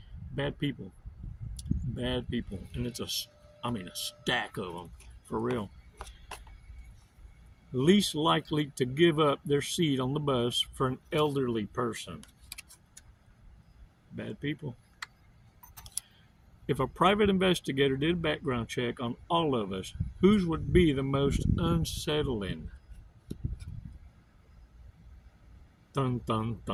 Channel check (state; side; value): identical; both; correlation 1.00